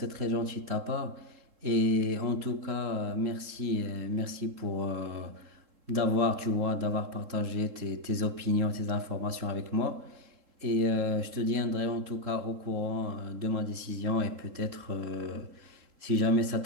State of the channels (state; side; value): late; left; 3.7 ms